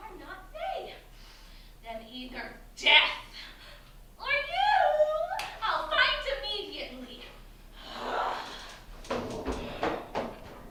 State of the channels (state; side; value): identical; both; correlation 1.00